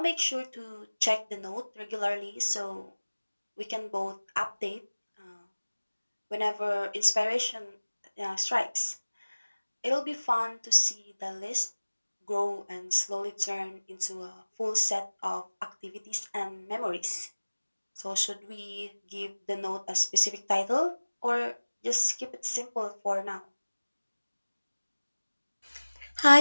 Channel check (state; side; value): inverted; both; correlation -1.00